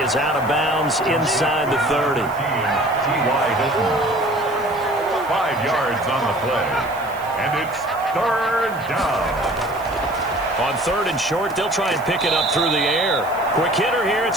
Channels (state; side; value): noise; right; hiss, 21 dB below the sound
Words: is out of bounds inside the 30. T.Y. Hilton. 5 yards on the play. And it's third down. On third and short, they'll try and pick it up through the air. Quick hitter here, it's